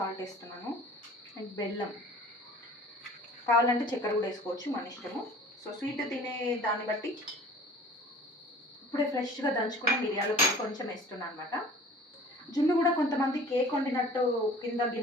వేస్తున్నాను అండ్ బెల్లం. కావాలంటే చక్కెర కూడా వేసుకోవచ్చు, మన ఇష్టము. సో స్వీట్ తినే దాన్ని బట్టి. ఇప్పుడే ఫ్రెష్గా దంచుకున్న మిరియాల పొడి కొంచెం వేస్తున్నాను అనమాట. జున్ను కూడా కొంతమంది కేక్ వండినట్టు కింద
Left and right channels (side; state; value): both; normal; correlation 0.46